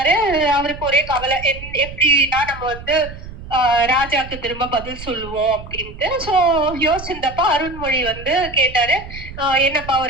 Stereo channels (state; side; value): noise; right; rumble, 13 dB below the sound